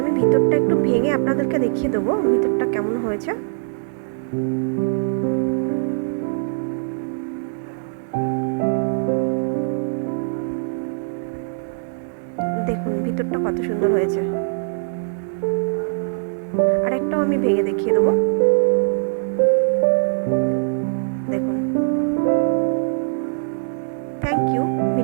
আমি ভিতরটা একটু ভেঙে আপনাদেরকে দেখিয়ে দেবো ভিতরটা কেমন হয়েছে। দেখুন ভিতরটা কত সুন্দর হয়েছে। আর একটাও আমি ভেঙে দেখিয়ে দেবো। দেখুন। থ্যাংক ইউ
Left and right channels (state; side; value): silent; left; digital silence